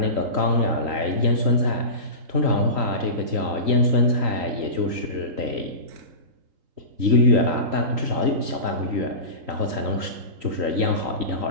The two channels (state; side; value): late; left; 3.1 ms